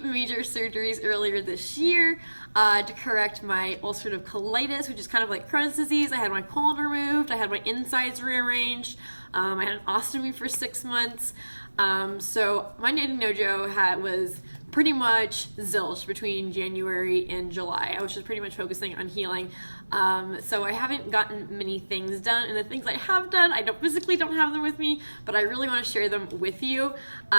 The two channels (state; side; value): inverted; both; correlation -1.00